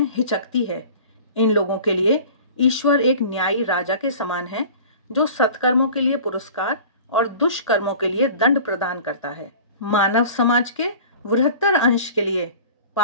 हिचकती है। इन लोगों के लिए ईश्वर एक न्यायी राजा के समान है जो सत्कर्मों के लिए पुरस्कार और दुष्कर्मों के लिए दंड प्रदान करता है। मानव समाज के बृहत्तर अंश के लिए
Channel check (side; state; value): both; inverted; correlation -0.42